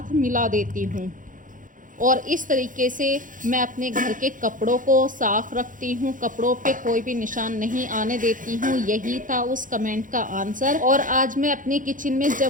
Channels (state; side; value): late; left; 0.38 ms